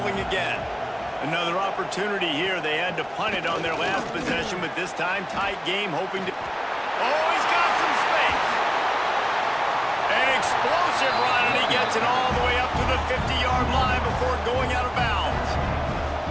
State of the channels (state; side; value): identical; both; correlation 1.00